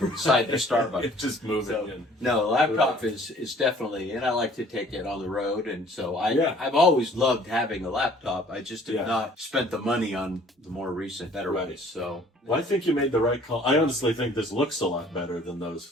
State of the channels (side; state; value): both; normal; correlation 0.55